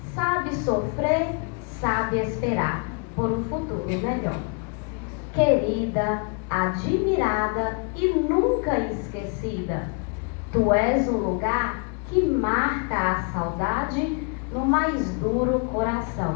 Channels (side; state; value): right; quieter; 38.7 dB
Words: sabe sofrer, sabe esperar por um futuro melhor. Querida, admirada e nunca esquecida, tu és um lugar que marca a saudade no mais duro